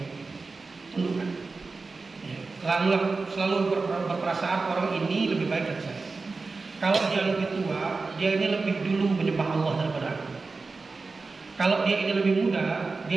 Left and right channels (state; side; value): quieter; left; 4.0 dB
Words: tundukkan. Ya, selalu berperasaan orang ini lebih baik dari saya. Kalau dia lebih tua, dia ini lebih dulu menyembah Allah daripada aku. Kalau dia ini lebih muda,